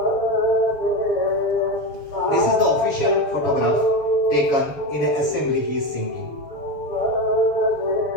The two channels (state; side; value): late; right; 6.7 ms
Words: This is the official photograph taken in an assembly he is singing.